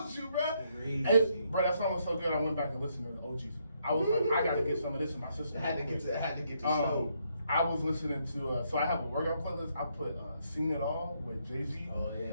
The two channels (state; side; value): inverted; both; correlation -0.74